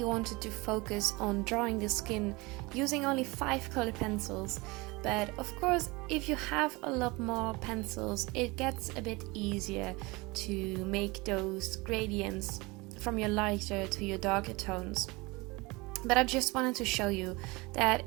wanted to focus on drawing the skin using only 5 color pencils, but of course if you have a lot more pencils it gets a bit easier to make those gradients from your lighter to your darker tones. But I just wanted to show you that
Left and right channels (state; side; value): quieter; left; 24.4 dB